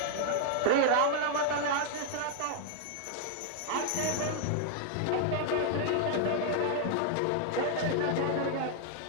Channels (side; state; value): both; different; correlation 0.00